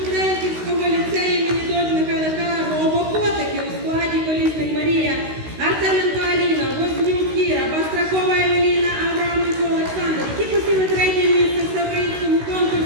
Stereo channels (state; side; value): late; left; 16 ms